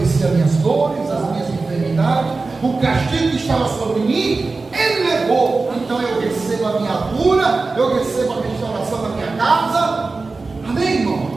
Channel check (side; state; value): left; quieter; 3.8 dB